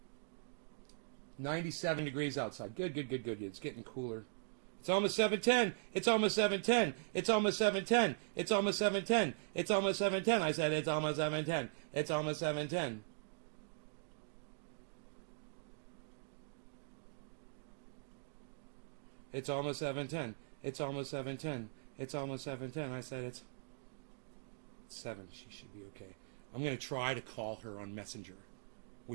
97 degrees outside. Good. It's getting cooler. It's almost 7:10. It's almost 7:10. It's almost 7:10. It's almost 7:10. It's almost 7:10. I said it's almost 7:10. It's almost 7:10. It's almost 7:10. It's almost 7:10. It's almost 7:10. I said it's 7. She should be okay. I'm going to try to call her on Messenger,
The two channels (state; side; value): silent; left; digital silence